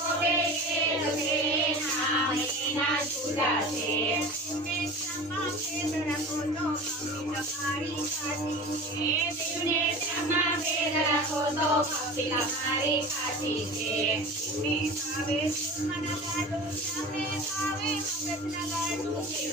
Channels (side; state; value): both; normal; correlation 0.35